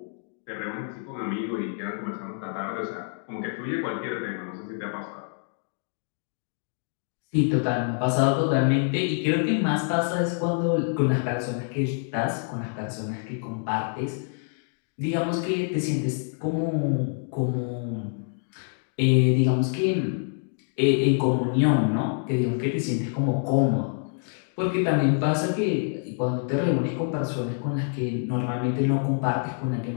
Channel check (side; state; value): right; silent; 61 dB below the other